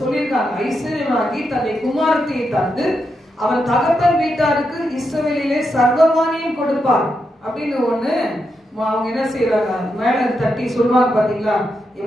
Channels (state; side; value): normal; both; correlation 0.84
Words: சொல்லியிருக்காங்க, ஐஸ்வர்யமாகி தன்னை குமாரத்தையை தந்து அவன் தகப்பன் வீட்டாருக்கு இஸ்ரவேலிலே சர்வமானியம் கொடுப்பார் அப்படின்னு ஒண்ணு அவங்க என்ன செய்யறாங்க, மேல தட்டி சொல்லுவாங்க. பாத்தீங்களா,